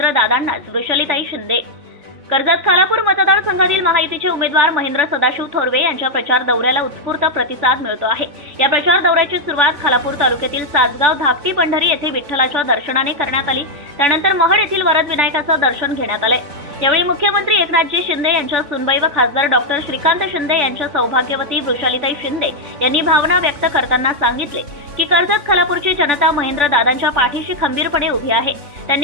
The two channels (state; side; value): late; left; 3.4 ms